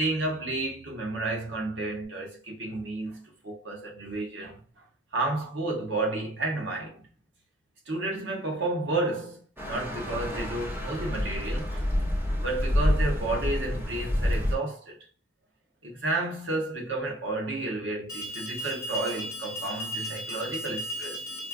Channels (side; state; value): both; normal; correlation 0.54